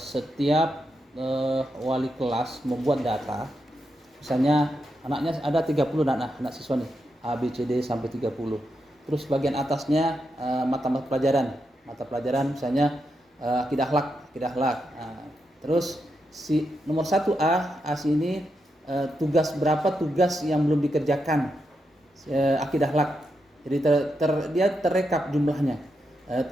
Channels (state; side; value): normal; both; correlation 0.84